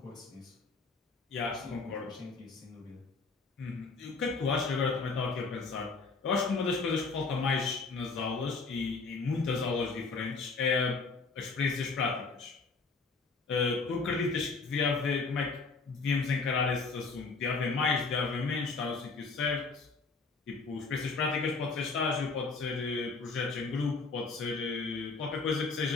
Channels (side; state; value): right; quieter; 4.2 dB